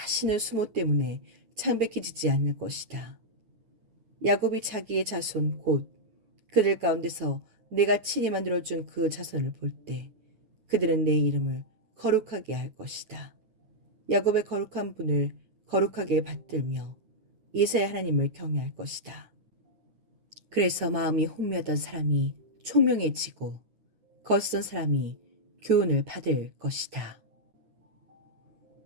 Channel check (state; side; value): late; left; 8.8 ms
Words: 수모 때문에 창백해지지 않을 것이다. 야곱이 자기의 자손 곧 그들 가운데서 내가 친히 만들어준 그 자손을 볼 때 그들은 내 이름을 거룩하게 할 것이다. 야곱의 거룩한 분을 거룩하게 받들며 이스라엘 하나님을 경외할 것이다. 그래서 마음이 혼미하던 사람이 총명해지고 거스던 사람이 교훈을 받을 것이다.